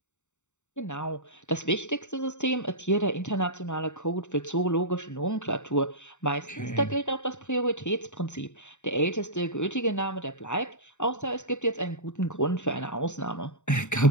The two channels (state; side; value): late; right; 0.84 ms